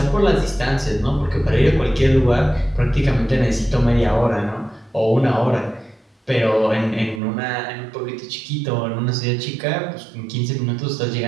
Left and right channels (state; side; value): drops out; left; at 7.2 s